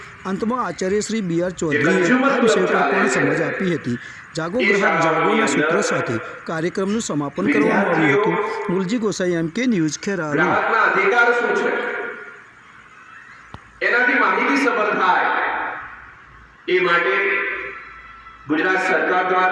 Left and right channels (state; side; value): identical; both; correlation 1.00